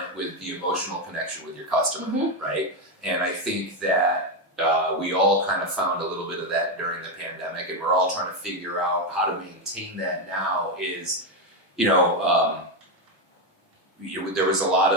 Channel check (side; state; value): both; normal; correlation 0.08